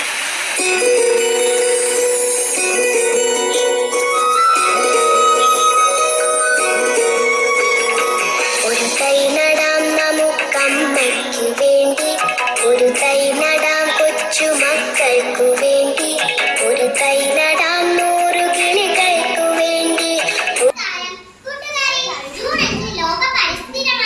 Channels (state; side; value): identical; both; correlation 1.00